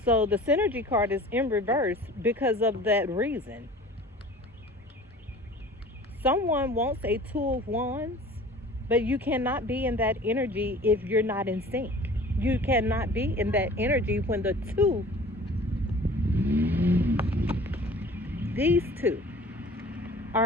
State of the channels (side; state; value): both; normal; correlation 0.45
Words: So the synergy card is in reverse because of that reason. Someone wants a two of wands, but you cannot be in that energy if you're not in sync. You cannot be in that energy when the two, these two,